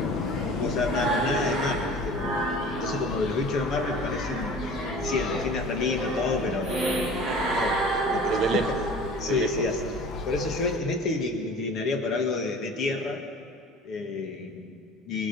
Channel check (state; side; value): normal; both; correlation 0.42